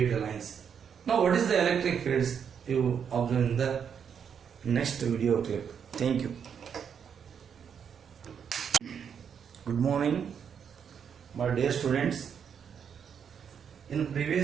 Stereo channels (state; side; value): quieter; left; 7.5 dB